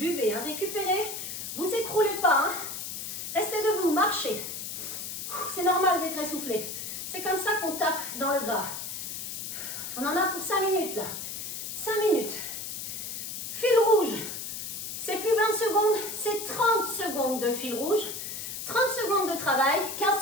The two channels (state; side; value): noise; left; hiss, 6 dB below the sound